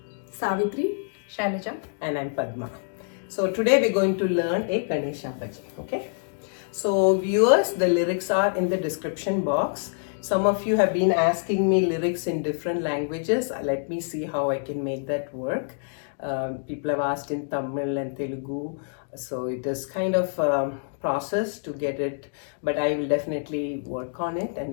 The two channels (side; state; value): right; silent; digital silence